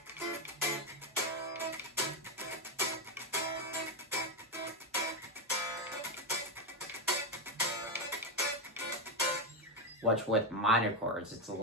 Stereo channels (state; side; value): normal; both; correlation 0.08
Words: which with minor chords, it's a